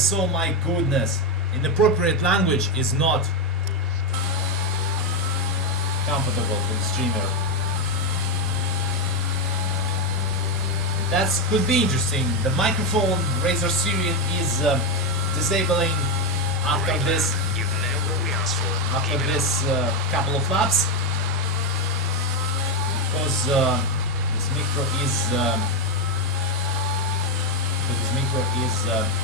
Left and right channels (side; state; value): both; normal; correlation 0.07